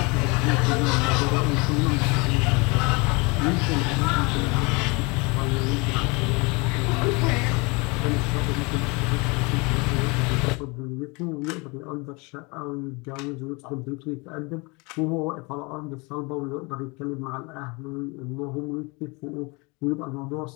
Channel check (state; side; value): quieter; right; 28.2 dB